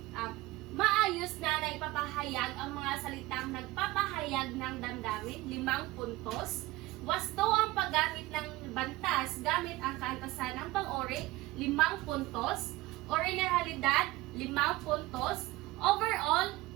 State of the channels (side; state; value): left; quieter; 19.2 dB